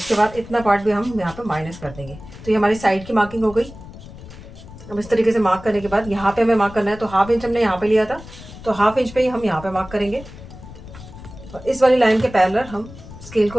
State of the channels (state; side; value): noise; left; rumble, 16 dB below the sound